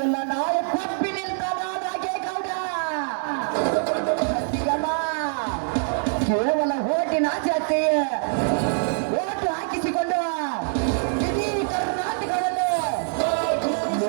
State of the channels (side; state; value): left; silent; 62 dB below the other